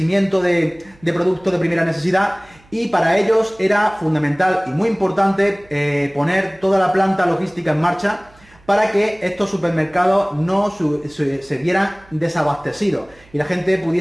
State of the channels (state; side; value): noise; right; hum, 29 dB below the sound